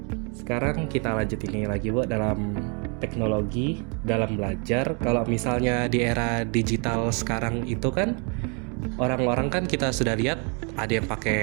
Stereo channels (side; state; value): left; quieter; 35.5 dB